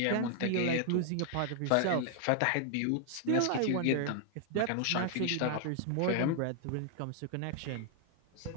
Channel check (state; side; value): different; both; correlation 0.00